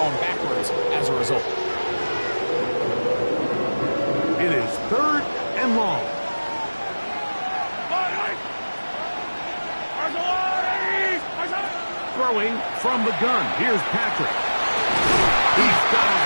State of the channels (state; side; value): inverted; both; correlation -1.00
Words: backwards as a result. It is third and long. Throwing from the gun. Here's Patrick. He's got his